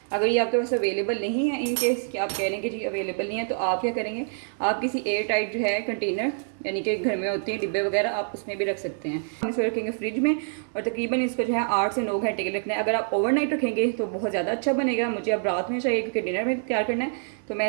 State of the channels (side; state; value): left; silent; digital silence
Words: अगर ये आपके पास अवेलेबल नहीं है, इन केस कि आप कह रहे हैं कि जी अवेलेबल नहीं है, तो आप क्या करेंगे, आप किसी एयर टाइट जो है कंटेनर, यानी कि घर में होते हैं डिब्बे वगैरह, आप उसमें भी रख सकते हैं। हम इसको रखेंगे फ्रिज में, और तकरीबन इसको जो है 8 से 9 घंटे के लिए रखना है। अगर आप ओवरनाइट रखेंगे तो बहुत ज़्यादा अच्छा बनेगा। मुझे अब रात में चाहिए क्योंकि डिनर में तैयार करना है, तो मैं